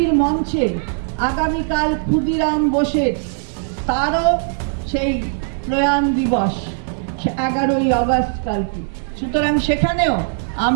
মঞ্চে, আগামীকাল ক্ষুদিরাম বোসের তারও সেই প্রয়াণ দিবস 11ই আগস্ট কালকে। সুতরাং সেখানেও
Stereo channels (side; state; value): left; silent; 58 dB below the other